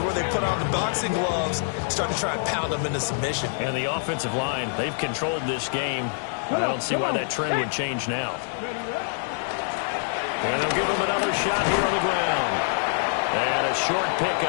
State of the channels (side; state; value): right; silent; digital silence